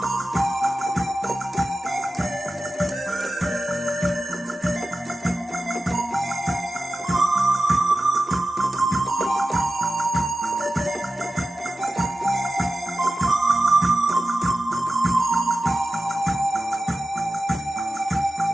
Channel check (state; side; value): normal; both; correlation 0.93